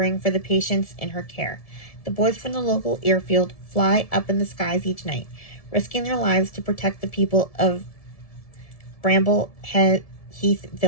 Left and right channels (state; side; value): late; right; 1.7 ms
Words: for the patients in her care. The boys from the local airfield fly up in the skies each night, risking their lives to protect the people of Bramble Heath